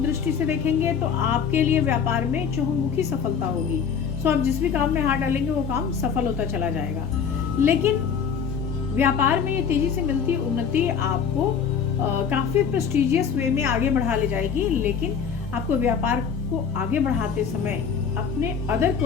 दृष्टि से देखेंगे तो आपके लिए व्यापार में चहुमुखी सफलता होगी। सो आप जिस भी काम में हाथ डालेंगे वो काम सफल होता चला जाएगा। लेकिन व्यापार में ये तेजी से मिलती उन्नति आपको काफी प्रेस्टिजियस वे में आगे बढ़ा ले जाएगी, लेकिन आपको व्यापार को आगे बढ़ाते समय अपने अदर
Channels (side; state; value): right; quieter; 6.8 dB